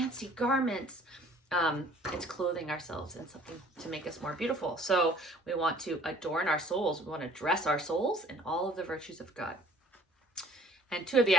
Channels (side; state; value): both; normal; correlation 0.54